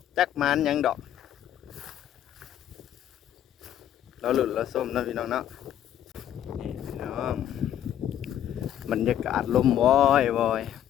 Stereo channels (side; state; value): right; quieter; 11.0 dB